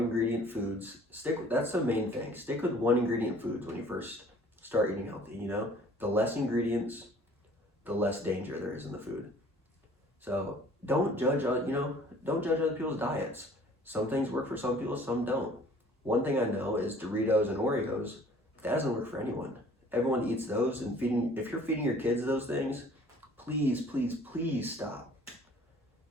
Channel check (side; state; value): both; normal; correlation 0.53